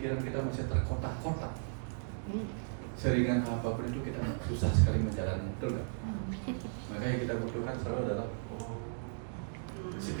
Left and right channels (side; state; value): left; silent; digital silence